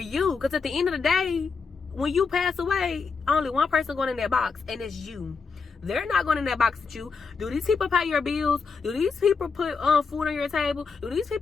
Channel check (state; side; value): quieter; right; 5.1 dB